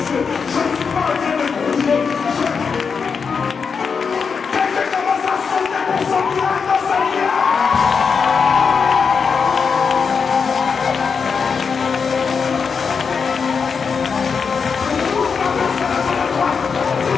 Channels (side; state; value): right; quieter; 5.7 dB